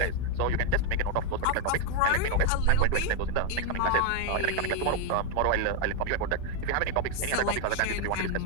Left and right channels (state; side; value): different; both; correlation 0.01